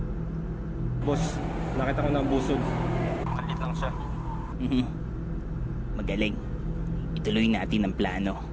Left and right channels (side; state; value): both; identical; correlation 1.00